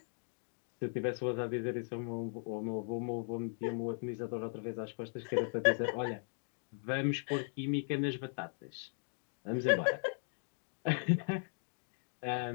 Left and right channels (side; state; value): right; silent; digital silence